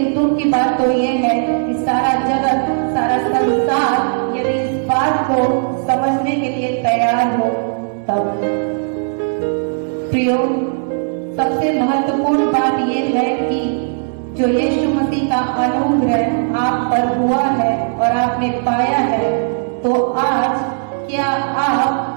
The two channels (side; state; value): left; silent; digital silence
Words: दुख की बात तो ये है कि सारा जगत, सारा संसार यदि इस बात को समझने के लिए तैयार हो तब। प्रियो, सबसे महत्वपूर्ण बात ये है कि जो यीशु मसीह का अनुग्रह आप पर हुआ है और आपने पाया है, तो आज क्या